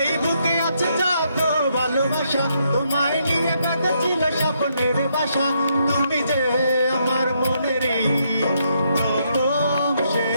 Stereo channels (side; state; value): both; inverted; correlation -0.76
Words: বুকে আছে যত ভালোবাসা, তোমায় নিয়ে কাঁদা ছিল স্বপ্নের বাসা। তুমি যে আমার মনেরই প্রথম